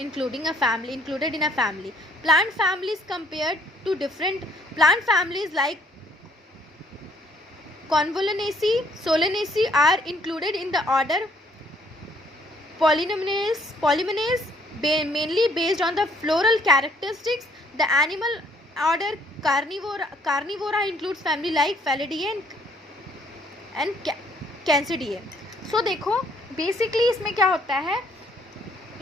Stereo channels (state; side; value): normal; both; correlation 0.63